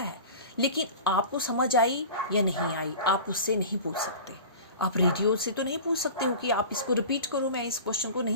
लेकिन आपको समझ आई या नहीं आई आप उससे नहीं पूछ सकते। आप रेडियो से तो नहीं पूछ सकते हो कि आप इसको रिपीट करो, मैं इस क्वेश्चन को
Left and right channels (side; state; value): both; inverted; correlation -0.36